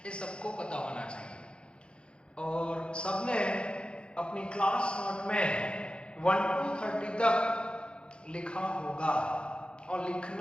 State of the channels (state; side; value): late; right; 0.056 ms